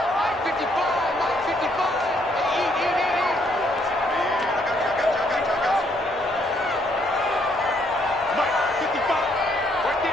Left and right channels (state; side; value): normal; both; correlation 0.70